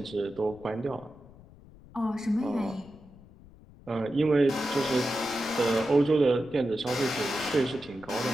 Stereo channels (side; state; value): left; noise; rumble, 22 dB below the sound